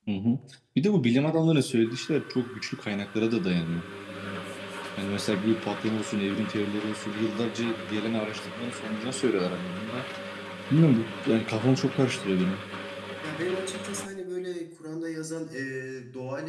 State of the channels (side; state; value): both; identical; correlation 1.00